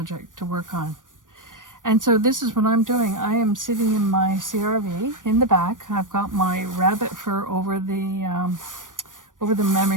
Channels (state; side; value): late; left; 0.88 ms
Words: to work on. And so this is what I'm doing. I am sitting in my CRV in the back. I've got my rabbit fur over the